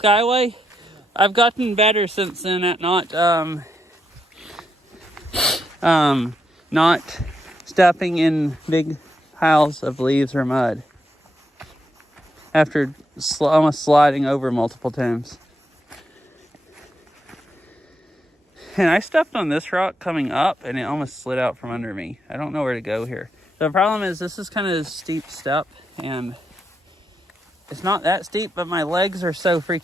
I've gotten better since then at not stepping in big piles of leaves or mud after almost sliding over multiple times. And I stepped on this rock coming up and it almost slid out from under me. I don't know where to go here. The problem is this is kind of a steep step and it's not that steep, but my legs are so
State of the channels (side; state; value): both; normal; correlation 0.82